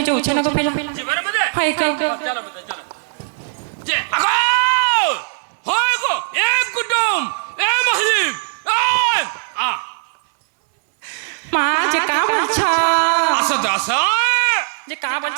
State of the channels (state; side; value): silent; left; 63 dB below the other